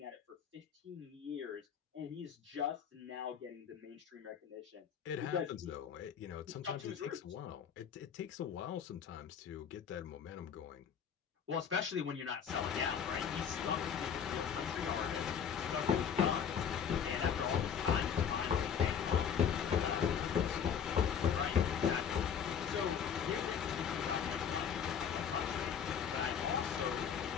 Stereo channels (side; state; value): right; quieter; 7.7 dB